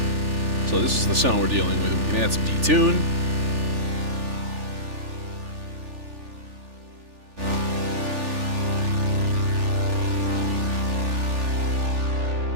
So this is the sound we're dealing with. We can add some detune.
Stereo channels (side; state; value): left; late; 3.4 ms